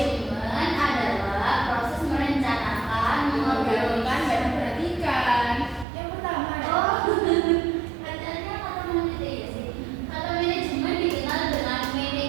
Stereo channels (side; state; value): left; drops out; at 5.9 s